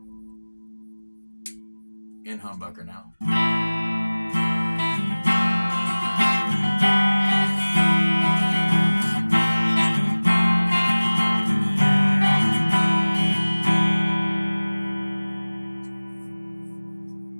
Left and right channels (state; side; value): inverted; both; correlation -1.00